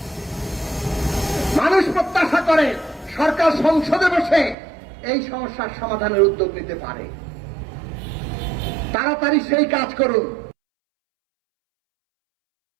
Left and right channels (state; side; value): drops out; left; at 4.5 s